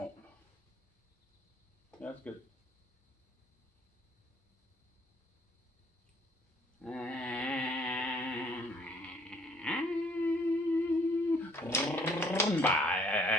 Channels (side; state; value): both; normal; correlation 0.62